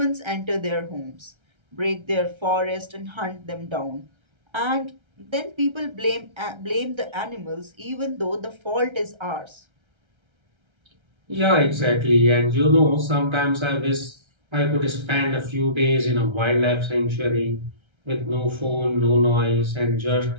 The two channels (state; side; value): late; left; 1.3 ms